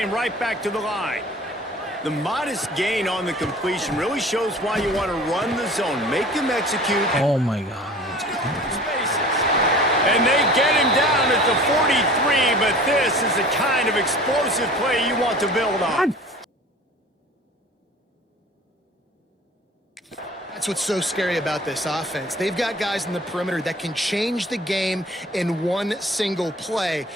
right back to the line. The modest gain on the completion really shows why you want to run the zone. Make them execute. Oh my God. And they get him down at the 43, but this is the kind of explosive play you want to build on. That's what's so scary about this offense. They've got guys in the perimeter that can change the game in one single play,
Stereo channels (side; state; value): both; normal; correlation 0.44